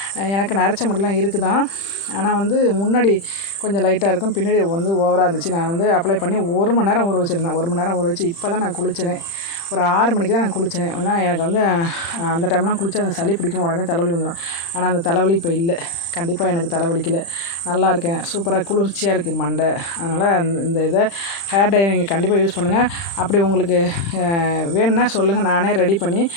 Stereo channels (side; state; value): right; late; 35 ms